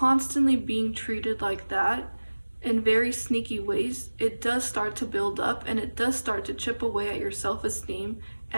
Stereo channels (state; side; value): inverted; both; correlation -1.00